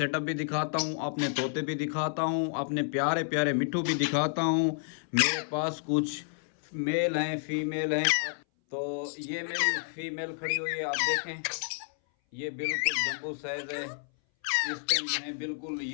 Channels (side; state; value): right; silent; 58 dB below the other